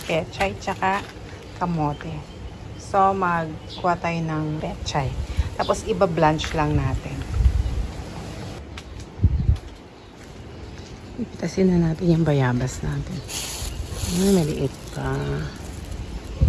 pechay tsaka kamote. So, magkuha tayo ng pechay. Tapos, iba-blanch lang natin. Ipitasin na natin yung bayabas natin. Maliit pa.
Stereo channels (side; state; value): both; identical; correlation 1.00